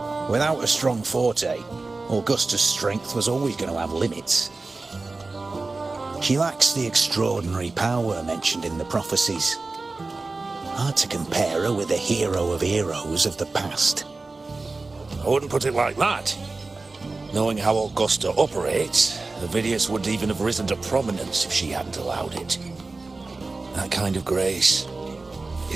Without a strong forte, Augusta's strength was always going to have limits. She lacks the extraordinary power mentioned in the prophecies. Hard to compare her with a hero of heroes of the past. I wouldn't put it like that. Knowing how Augusta operates, Avidius wouldn't even have risen to prominence if she hadn't allowed it. That kind of grace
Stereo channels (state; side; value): quieter; left; 3.6 dB